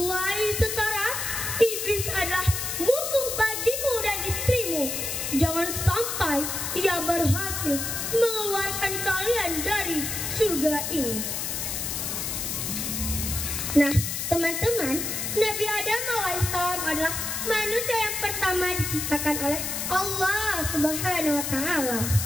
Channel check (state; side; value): noise; left; hiss, 3 dB below the sound